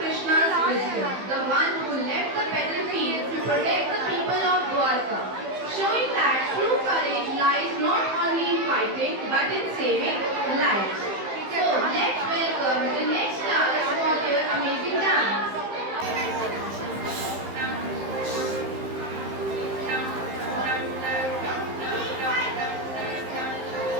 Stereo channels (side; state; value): left; late; 15 ms